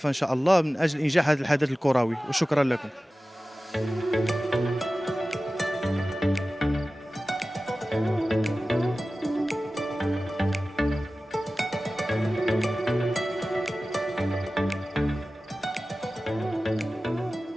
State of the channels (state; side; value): normal; both; correlation 0.96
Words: ان شاء الله من اجل انجاح هذا الحدث الكروي، وشكرا لكم.